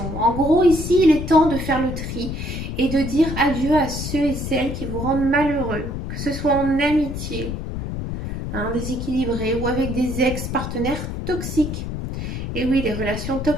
En gros, ici, il est temps de faire le tri et de dire adieu à ceux et celles qui vous rendent malheureux, que ce soit en amitié, hein, déséquilibré, ou avec des ex-partenaires toxiques. Et oui, les relations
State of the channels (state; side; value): noise; left; rumble, 5 dB below the sound